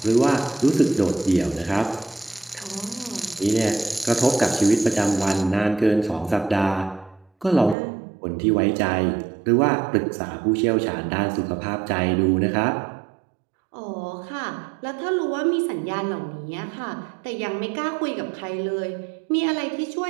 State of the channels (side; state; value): left; drops out; at 7.8 s